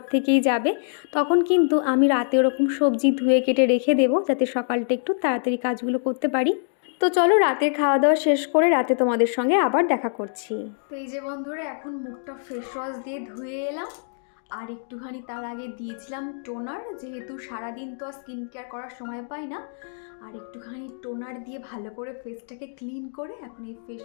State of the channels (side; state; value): right; silent; digital silence